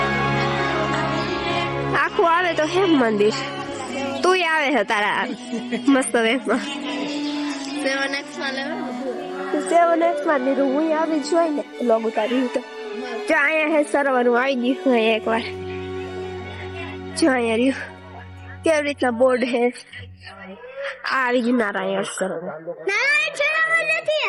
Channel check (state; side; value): identical; both; correlation 1.00